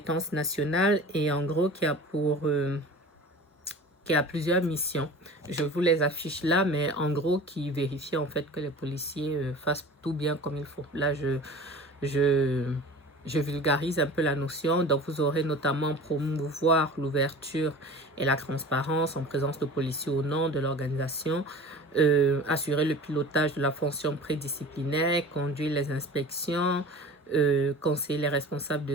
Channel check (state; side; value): normal; both; correlation 0.39